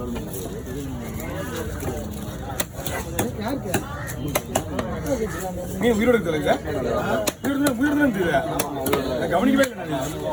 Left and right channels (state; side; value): identical; both; correlation 1.00